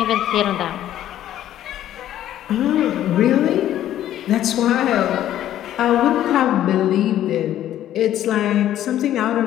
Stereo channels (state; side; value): quieter; right; 12.1 dB